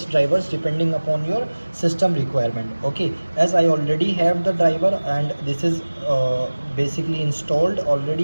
drivers depending upon your system requirement, okay. As I already have the driver and this is basically installed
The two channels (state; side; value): inverted; both; correlation -1.00